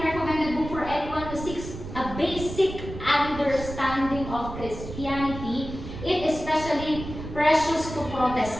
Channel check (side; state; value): right; noise; rumble, 10 dB below the sound